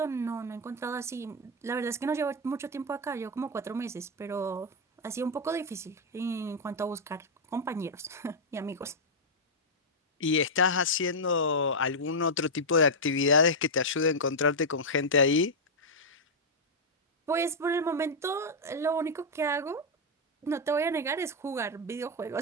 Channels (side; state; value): both; normal; correlation -0.03